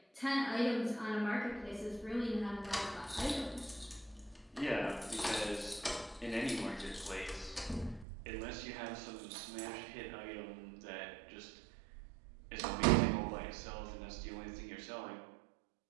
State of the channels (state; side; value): drops out; left; at 8.1 s